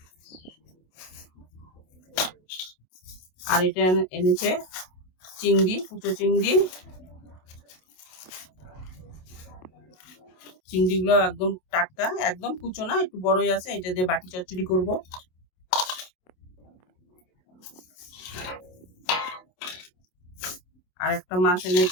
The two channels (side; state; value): right; late; 27 ms